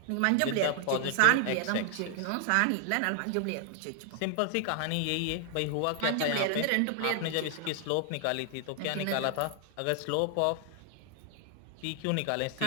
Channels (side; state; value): both; different; correlation 0.00